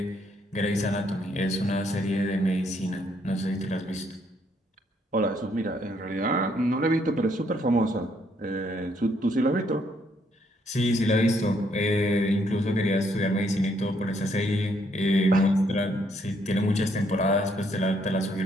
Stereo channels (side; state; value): both; normal; correlation 0.71